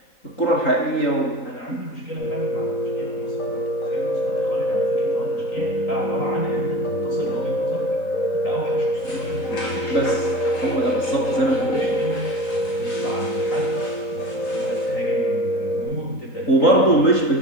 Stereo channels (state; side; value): late; right; 3.8 ms